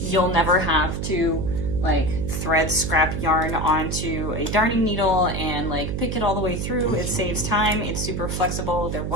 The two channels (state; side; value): noise; right; hum, 3 dB below the sound